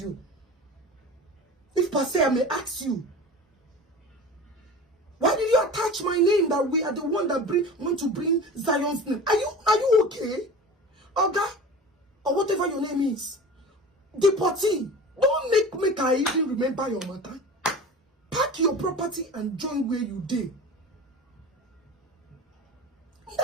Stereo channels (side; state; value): both; normal; correlation 0.35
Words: If per se I may ask you, why did you attach my name that we are the one that want to bring Zion's name? Are you okay? Oga, or whatever your name is. Deportee. Don't make I even remember your matter. Pack your property and join where you did.